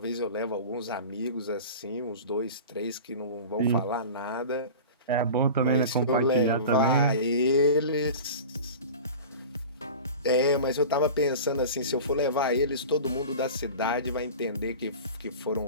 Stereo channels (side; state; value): both; inverted; correlation -0.34